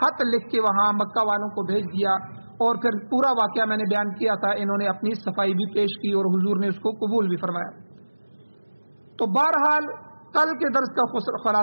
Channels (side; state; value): both; inverted; correlation -1.00